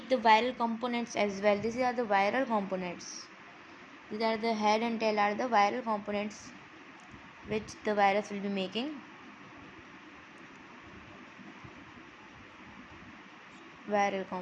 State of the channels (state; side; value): identical; both; correlation 1.00